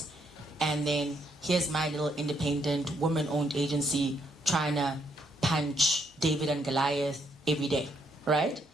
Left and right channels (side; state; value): both; normal; correlation 0.73